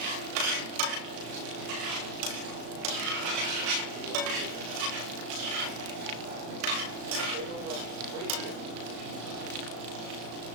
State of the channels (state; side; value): late; left; 35 ms